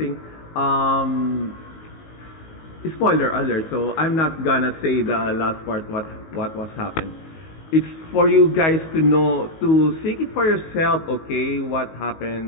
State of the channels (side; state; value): right; late; 19 ms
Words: spoiler alert. So I'm not gonna say the last part what was happened. It's for you guys to know, to seek it for yourself. Okay, what